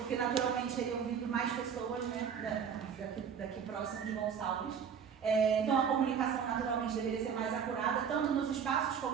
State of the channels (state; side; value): quieter; left; 7.2 dB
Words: naturalmente teriam vindo mais pessoas, né, daqui próximo de Gonçalves. Então a comunicação naturalmente deveria ser mais acurada, tanto nos espaços